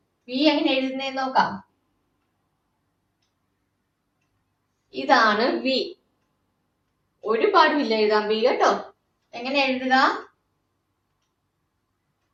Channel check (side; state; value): both; identical; correlation 1.00